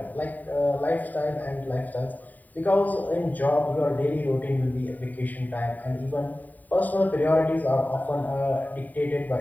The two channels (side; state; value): right; late; 0.083 ms